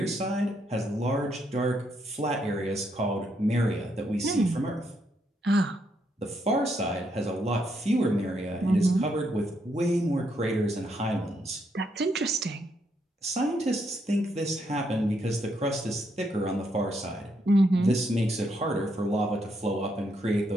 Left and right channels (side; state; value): both; normal; correlation 0.76